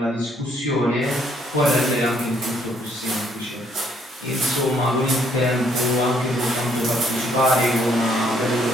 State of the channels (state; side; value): normal; both; correlation 0.67